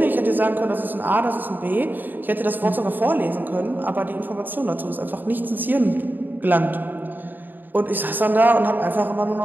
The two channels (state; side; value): late; left; 0.090 ms